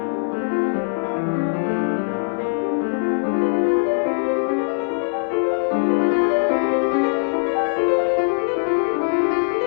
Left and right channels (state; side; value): silent; right; 65 dB below the other